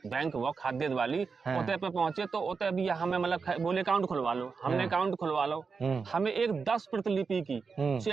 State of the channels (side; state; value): left; quieter; 5.1 dB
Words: बैंक वो खाद्य वाली, ओते पे पहुंचे तो ओते भी हमें मतलब बोले अकाउंट खुलवा लो, हमने अकाउंट खुलवा लो, हमें एक 10 प्रतिलिपि की